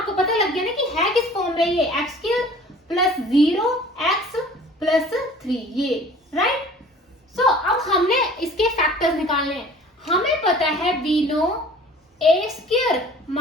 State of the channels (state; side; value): normal; both; correlation 0.48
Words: पता लग गया ना कि है किस फॉर्म में ये x² प्लस 0x प्लस 3, ये, राइट। सो अब हमने इसके फैक्टर्स निकालने हैं। हमें पता है we know a²